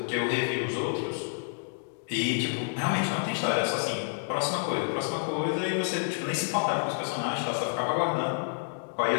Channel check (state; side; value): silent; right; digital silence